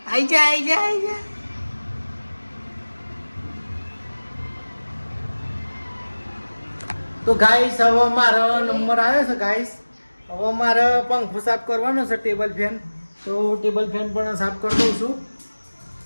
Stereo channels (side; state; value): both; inverted; correlation -1.00